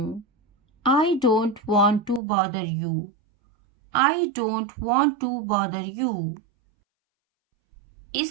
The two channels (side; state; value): left; drops out; at 2.2 s